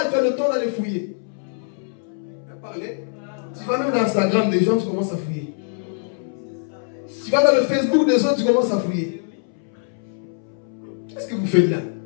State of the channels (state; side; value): silent; right; 63 dB below the other